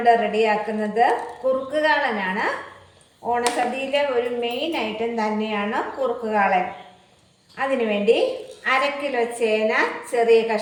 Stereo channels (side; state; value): both; identical; correlation 1.00